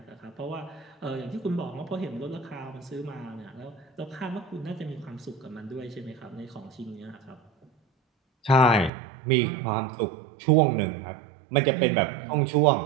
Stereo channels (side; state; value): left; drops out; at 8.9 s